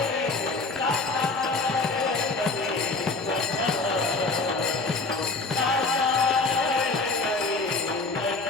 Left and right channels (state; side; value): quieter; right; 3.6 dB